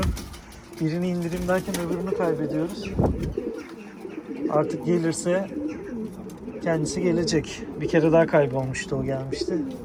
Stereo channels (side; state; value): both; identical; correlation 1.00